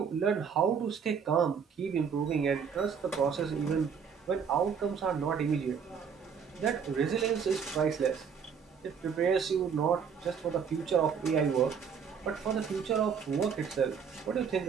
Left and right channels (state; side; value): quieter; left; 6.7 dB